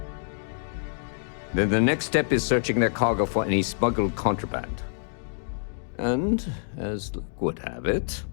Then the next step is searching their cargo for any smuggled contraband. And, as luck would have it,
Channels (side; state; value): right; silent; digital silence